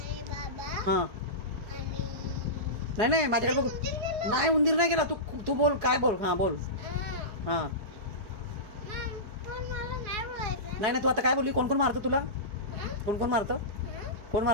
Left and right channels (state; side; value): late; left; 4.8 ms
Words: बाबा हां. आणि नाही नाही माझ्याकडे बघ. उंदीर गेला. नाही उंदीर नाही गेला. तू तू बोल, काय बोल. हां बोल. हां. हां. मग पण मला नाही बोलायचं. नाही नाही तू आता काय बोलली? कोण कोण मारतं तुला? हां? कोण कोण मारतं? हां? कोण